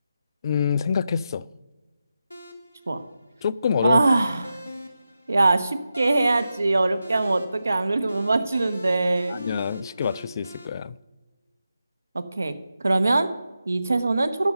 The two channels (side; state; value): both; inverted; correlation -0.89